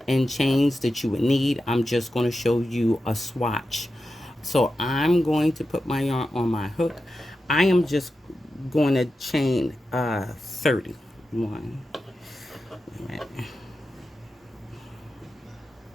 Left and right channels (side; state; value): both; normal; correlation 0.91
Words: and chains that you would need. I'm just going to show you a swatch. So I'm going to put my yarn on my hook. I am just going to chain 30. One,